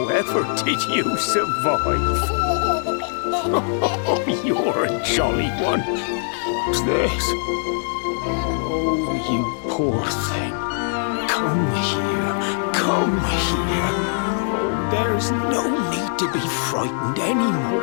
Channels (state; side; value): silent; right; 64 dB below the other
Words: did you survive? Oh, you're a jolly one. What's this? Oh, you poor thing. Come here. Come here. Oh, there's no need to be frightened